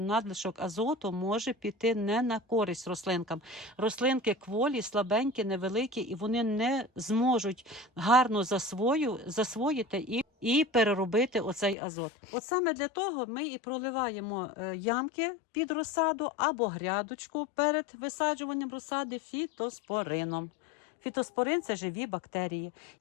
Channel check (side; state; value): right; drops out; at 11.8 s